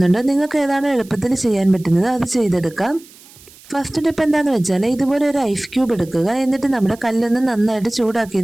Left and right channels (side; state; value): right; noise; hiss, 23 dB below the sound